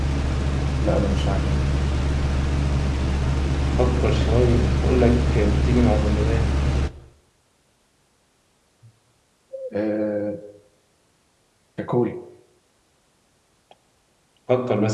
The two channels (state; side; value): identical; both; correlation 1.00